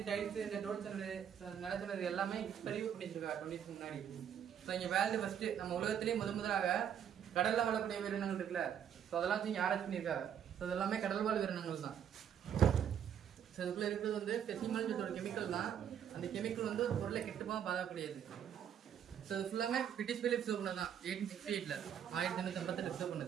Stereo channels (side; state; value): left; quieter; 8.9 dB